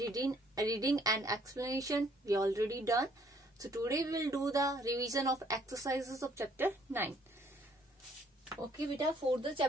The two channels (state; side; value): normal; both; correlation 0.64